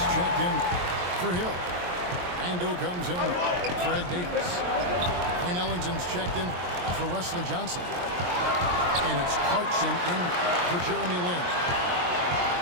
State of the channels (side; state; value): left; late; 23 ms